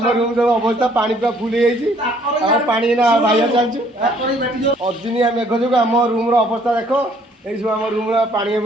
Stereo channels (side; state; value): both; normal; correlation 0.62